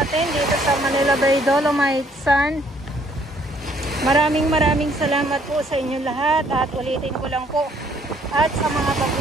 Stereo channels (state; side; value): normal; both; correlation 0.64